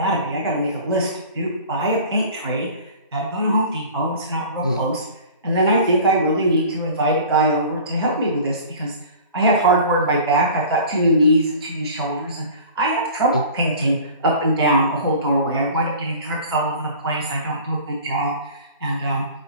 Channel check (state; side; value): inverted; both; correlation -0.42